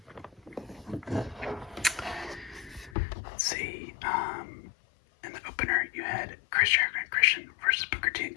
Let's see, in the opener, you had Chris Jericho and Christian versus Booker T and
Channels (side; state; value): right; drops out; at 3.0 s